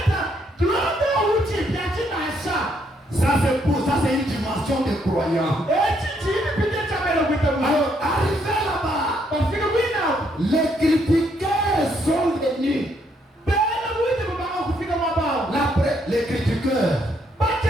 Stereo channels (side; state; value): both; normal; correlation 0.72